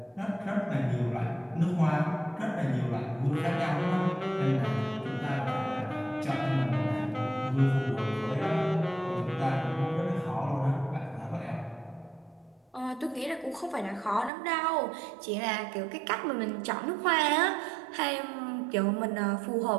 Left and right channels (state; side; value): drops out; left; at 14.3 s